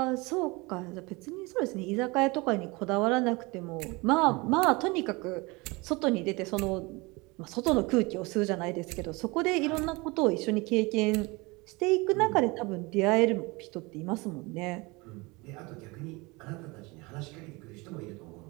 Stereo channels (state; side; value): quieter; left; 25.2 dB